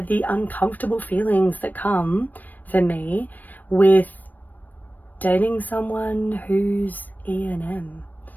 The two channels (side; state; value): right; late; 0.086 ms